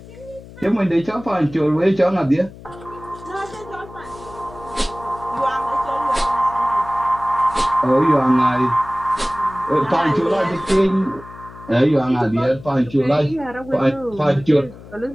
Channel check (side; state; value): left; noise; hum, 18 dB below the sound